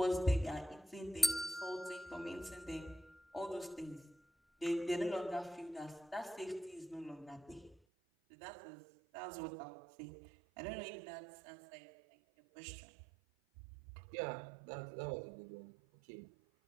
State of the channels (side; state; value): left; drops out; at 7.8 s